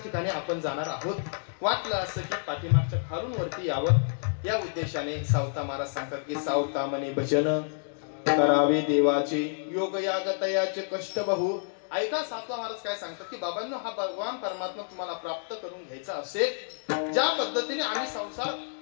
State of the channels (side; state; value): right; silent; digital silence